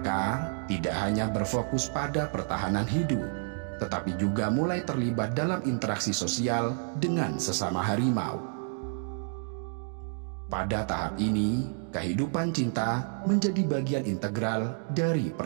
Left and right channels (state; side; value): silent; left; 58 dB below the other